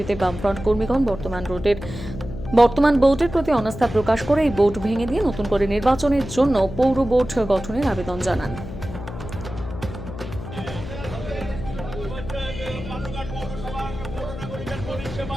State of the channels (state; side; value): noise; left; hum, 10 dB below the sound